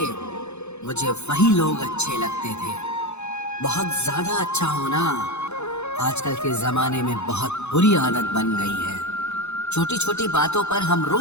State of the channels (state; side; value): late; right; 0.81 ms